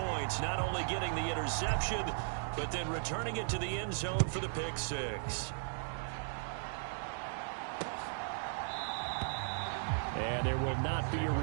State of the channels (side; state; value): left; silent; digital silence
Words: not only getting the interception, but then returning it to the end zone for the pick six. And there will not be a